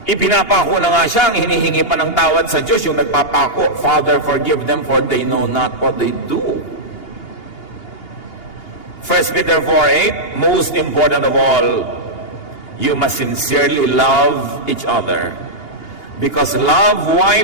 Ipinapako na nga siya, ang hinihingi pa ng tawad sa Diyos, yung nagpapako, Father, forgive them for they know not what they do. 1 Peter 4:8, most important of all, you must sincerely love each other because love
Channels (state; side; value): late; right; 2.8 ms